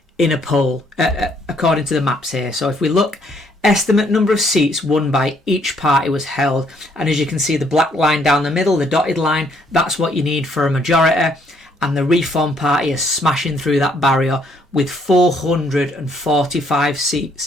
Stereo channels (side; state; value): both; normal; correlation 0.67